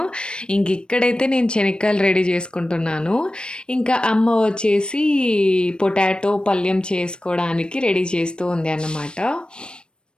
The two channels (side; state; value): right; late; 0.053 ms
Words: ఇక్కడైతే నేను శనక్కాయలు రెడీ చేసుకుంటున్నాను. ఇంకా అమ్మ వచ్చేసి పొటాటో పల్యం చేసుకోవడానికి రెడీ చేస్తూ ఉంది అన్నమాట.